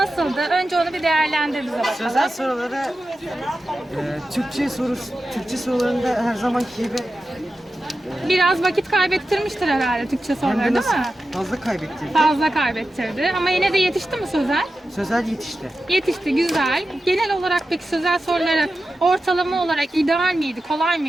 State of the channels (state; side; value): normal; both; correlation 0.92